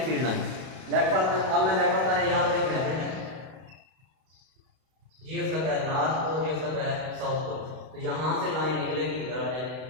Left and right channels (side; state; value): left; late; 32 ms